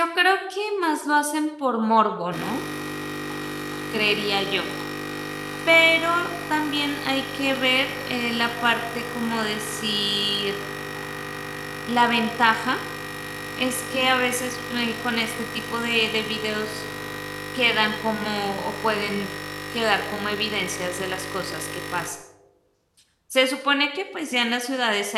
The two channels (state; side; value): identical; both; correlation 1.00